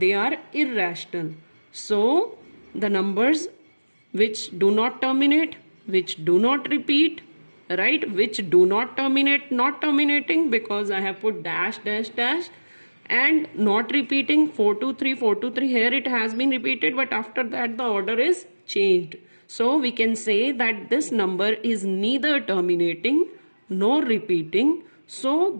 are irrational. So the numbers which do not terminate, which do not repeat, right, which do not terminate, not terminating because I have put dash dash dash, and not repeating 423 here it has been repeated, but after that the order is changed. So we can say that this number is neither terminating nor repeating. So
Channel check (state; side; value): inverted; both; correlation -1.00